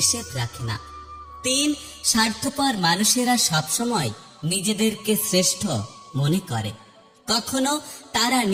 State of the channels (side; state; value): both; identical; correlation 1.00